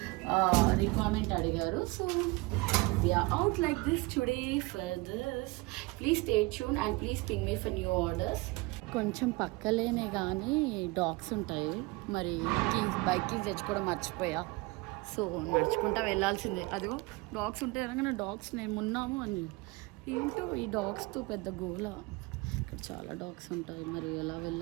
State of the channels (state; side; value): quieter; left; 24.0 dB